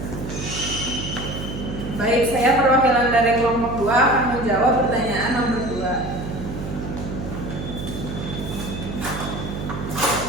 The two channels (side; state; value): right; noise; hum, 7 dB below the sound